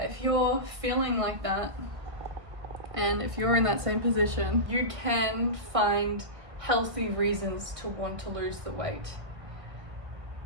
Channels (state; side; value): late; left; 1.6 ms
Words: if you're feeling like that, and if you're in that same position, you can find healthy reasons to want to lose the weight,